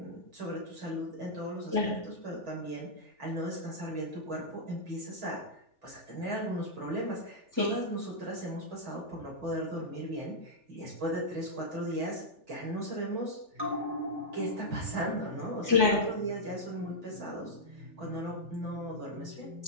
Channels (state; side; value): late; left; 3.4 ms